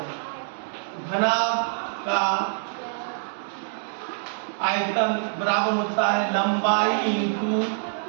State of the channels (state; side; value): silent; left; digital silence